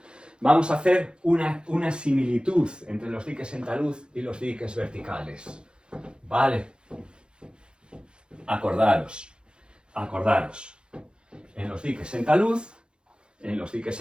Vamos a hacer una similitud entre los diques en talud y los diques verticales. Vale. Acordaros. En los diques en talud,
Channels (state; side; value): late; left; 0.051 ms